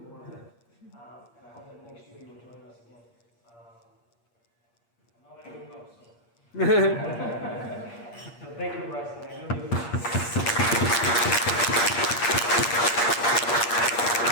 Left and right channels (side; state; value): right; late; 8.5 ms